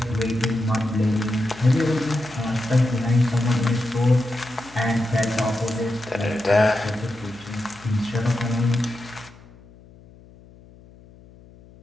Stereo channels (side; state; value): left; noise; hum, 23 dB below the sound